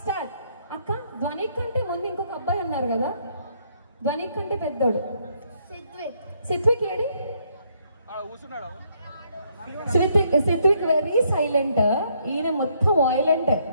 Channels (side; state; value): both; inverted; correlation -0.71